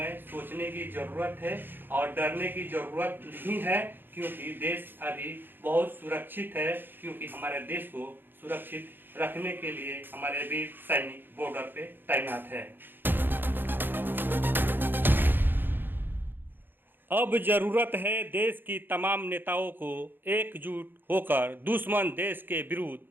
सोचने की ज़रूरत है और डरने की ज़रूरत नहीं है, क्योंकि देश अभी बहुत सुरक्षित है, क्योंकि हमारे देश को सुरक्षित रखने के लिए हमारे वीर सैनिक बॉर्डर पे तैनात है। अब जरूरत है देश की तमाम नेताओं को एकजुट होकर दुश्मन देश के विरुद्ध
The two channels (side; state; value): left; late; 0.097 ms